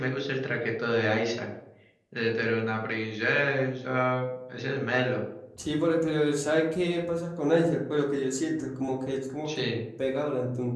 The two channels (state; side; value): identical; both; correlation 1.00